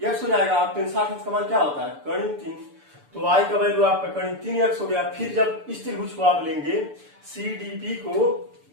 x हो जाएगा। आप 1060 अंश का मान क्या होता है कर्ण 3, तो y का वैल्यू आपका कर्ण 3x हो गया। फिर जब इस त्रिभुज को आप लेंगे CDP को,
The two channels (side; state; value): left; late; 6.9 ms